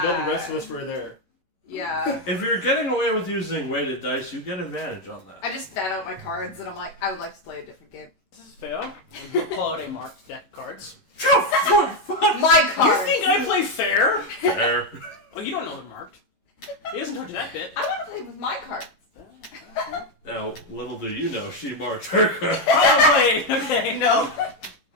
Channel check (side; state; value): right; late; 11 ms